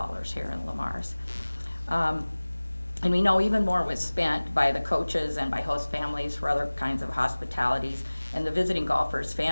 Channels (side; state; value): both; inverted; correlation -1.00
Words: here in Lamar's. And we know even more was spent by the coaches and by host families for other kinds of hospitalities. And the visiting golfers'